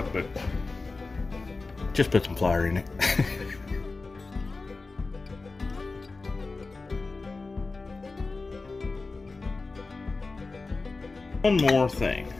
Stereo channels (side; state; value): right; quieter; 3.7 dB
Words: but just put some flour in it. One more thing,